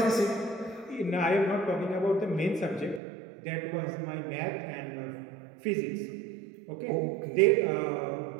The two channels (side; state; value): left; drops out; at 3.0 s